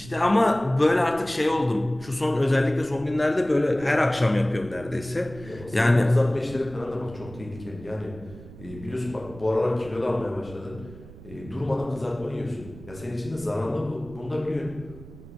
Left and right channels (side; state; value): right; noise; rumble, 17 dB below the sound